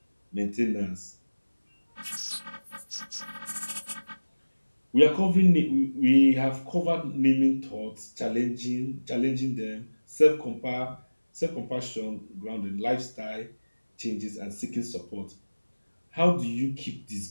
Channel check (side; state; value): both; inverted; correlation -1.00